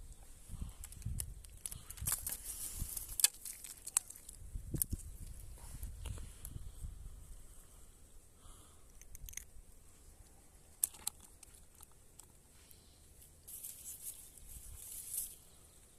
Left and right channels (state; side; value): identical; both; correlation 1.00